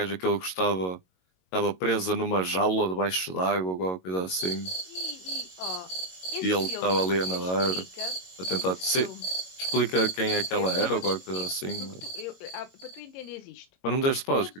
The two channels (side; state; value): right; late; 22 ms